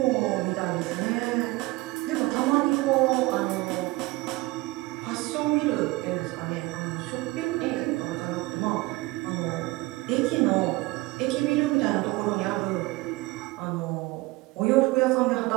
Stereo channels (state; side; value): quieter; left; 21.8 dB